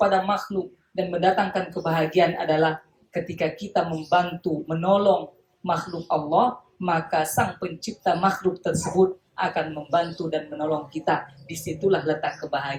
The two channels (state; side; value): identical; both; correlation 1.00